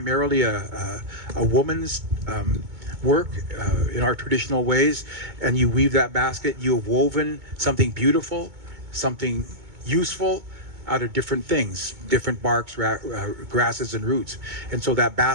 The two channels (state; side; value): late; left; 2.2 ms